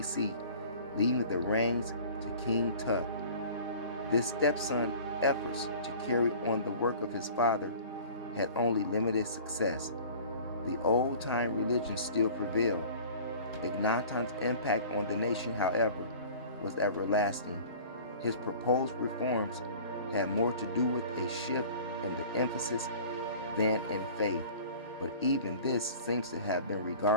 leaving the reins to King Tut. This stepson's efforts to carry on the work of his father had only limited success. The old-time religion still prevailed. Akhenaten's impact on the nation, however, was everlasting. His proposed reforms had more to do with a shift in the emphasis than in faith, but even this seems to have been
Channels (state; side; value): inverted; both; correlation -0.44